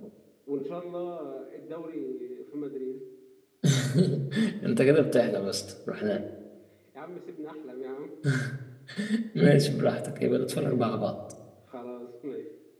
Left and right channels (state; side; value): identical; both; correlation 1.00